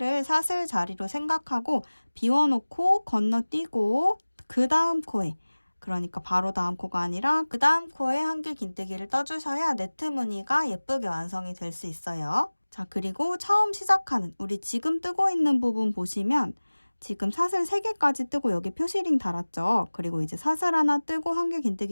사슬 자리로 생각하고 비워놓고 건너뛰고 그 다음 코에, 그러니까 바로 다음 코가 아니라 그 다음 코에 한길 긴뜨기를 떠주셔야 네트 무늬가 예쁘게 완성이 될 수 있어요. 자, 그리고 처음 시작하는 우리 지금 뜨고 있는 부분 보시면 지금 사슬 3개까지 뜨고 여기 표시링 달았죠. 그리고 이제 사슬 하나 뜨고 한길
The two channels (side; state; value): both; inverted; correlation -1.00